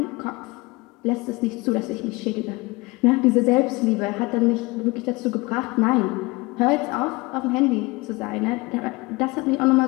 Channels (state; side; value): quieter; right; 23.6 dB